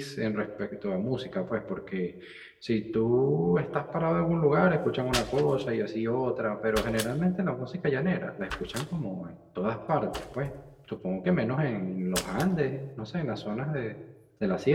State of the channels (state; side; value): identical; both; correlation 1.00